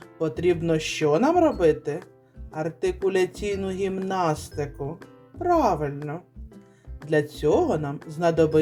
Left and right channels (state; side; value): identical; both; correlation 1.00